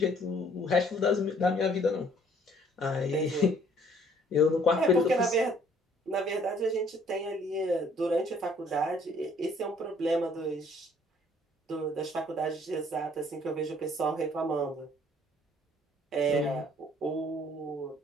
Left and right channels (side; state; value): both; normal; correlation 0.59